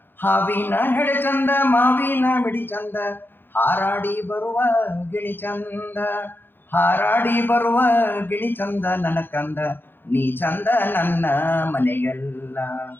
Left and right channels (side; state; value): right; late; 0.099 ms